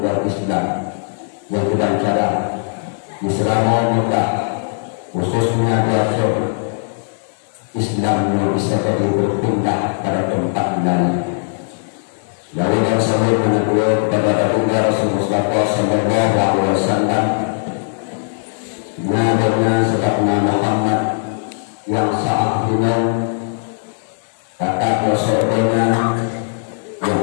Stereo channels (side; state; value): right; silent; digital silence